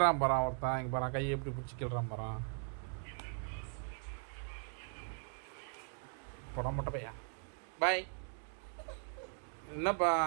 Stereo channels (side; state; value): left; silent; 52 dB below the other